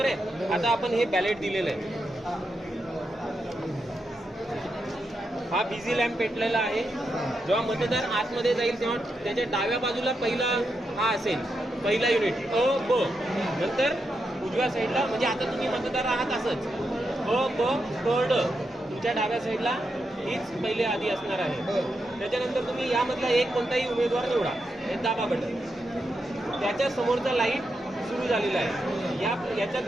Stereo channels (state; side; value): normal; both; correlation 0.85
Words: आहे. आता आपण हे बॅलेट दिलेलं आहे. हा बिझी लॅम्प पेटलेला आहे. जेव्हा मतदार आतमध्ये जाईल तेव्हा त्याच्या डाव्या बाजूला पहिला हा असेल, पहिला युनिट अ ब. नंतर उजव्या साईडला, म्हणजे आता तुम्ही मतदार आहात असंच अ ब क ड. तुमच्या डाव्या साईडला हीच पहिले आधी असणार आहे. त्याच्यानंतर तुम्ही यामधला एक कोणताही उमेदवार निवडा, हे दाबा बटन. त्याच्या समोरचा लाईट सुरू झालेला आहे.